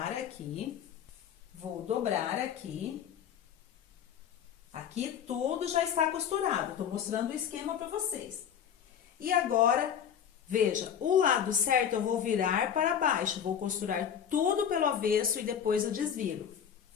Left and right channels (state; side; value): quieter; right; 8.6 dB